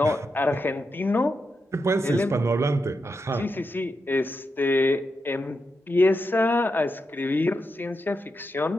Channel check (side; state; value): both; normal; correlation 0.86